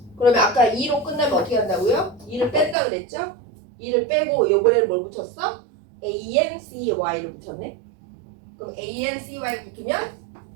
그러면 아까 2로 끝나면 어떻게 한다고요? 2를 뺀다 그랬죠? 2를 빼고 이번에는 뭘 붙였어? ANCY를 붙였네. 그럼 ANCY 붙으면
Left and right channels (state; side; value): drops out; left; at 2.8 s